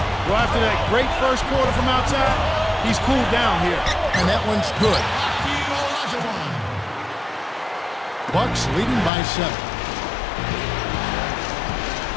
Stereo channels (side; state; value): right; drops out; at 9.1 s